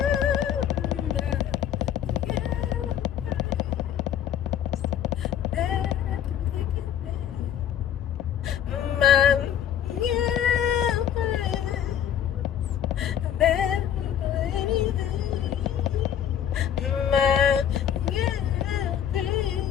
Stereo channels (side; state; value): right; quieter; 9.8 dB